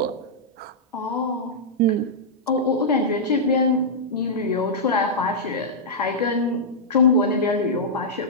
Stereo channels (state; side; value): normal; both; correlation -0.10